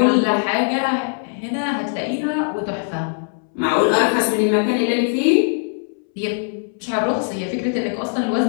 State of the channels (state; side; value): silent; right; 65 dB below the other